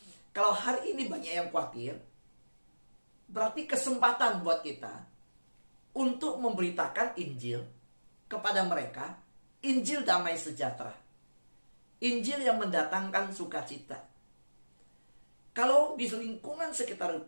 Kalau hari ini banyak yang khawatir, berarti kesempatan buat kita untuk memberitakan Injil kepada mereka, Injil damai sejahtera, Injil yang mendatangkan sukacita. Kalau di lingkungan sekitar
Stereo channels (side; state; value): both; inverted; correlation -1.00